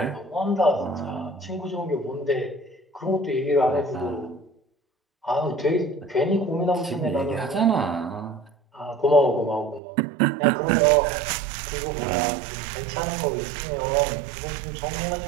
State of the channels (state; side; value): drops out; left; at 9.8 s